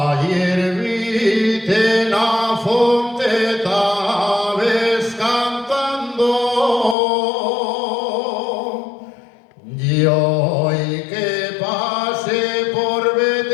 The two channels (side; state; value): right; drops out; at 7.0 s